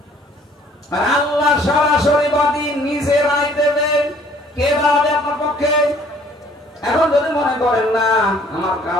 আর আল্লাহ সরাসরি বাদী, নিজে রায় দেবে, কে দাঁড়াবে আপনার পক্ষে? এখন যদি মনে করেন না আমার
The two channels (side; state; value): both; normal; correlation 0.58